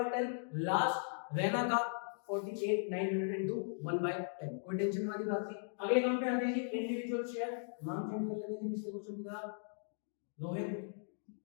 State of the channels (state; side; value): silent; right; digital silence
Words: लास्ट रैना का 48,900 into 1/10। कोई टेंशन वाली बात नहीं। अगले काम पे आते हैं जी, इंडिविजुअल शेयर, नाम चेंज कर लेते हैं पिछले क्वेश्चन की तरह, रोहित,